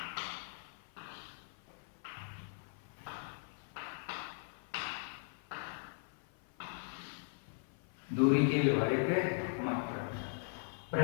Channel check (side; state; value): right; silent; 52 dB below the other